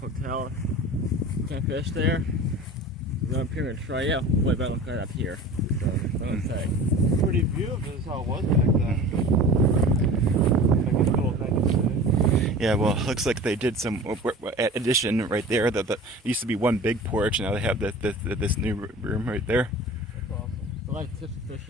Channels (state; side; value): normal; both; correlation 0.38